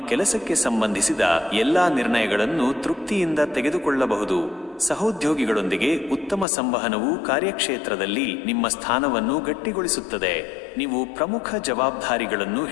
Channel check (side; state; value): right; drops out; at 6.5 s